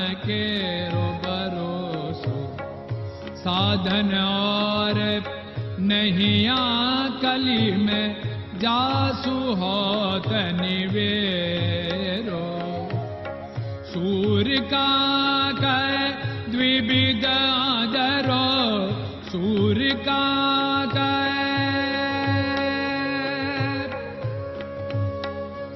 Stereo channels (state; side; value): identical; both; correlation 1.00